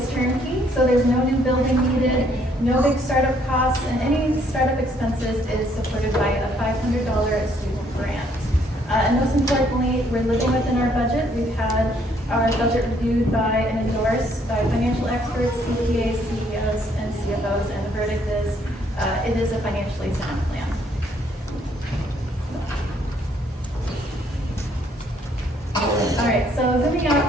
turnkey, so there's no new building needed, no big startup costs, and any startup expenses is supported by a $500 student grant. And most importantly, we're living within our budget. We've had our budget reviewed by and endorsed by financial experts, CPAs, CEOs, and CFOs, and the verdict is it is a financially sound plan. All right, so zooming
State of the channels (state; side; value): normal; both; correlation 0.67